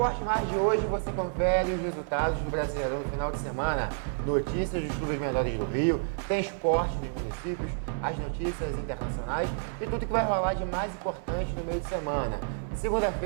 Mais de hoje você confere os resultados do Brasileirão no final de semana, notícias dos clubes menores do Rio, tem esporte dos municípios, as notícias internacionais e tudo que vai rolar de mais importante no meio de semana.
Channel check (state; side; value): silent; left; 58 dB below the other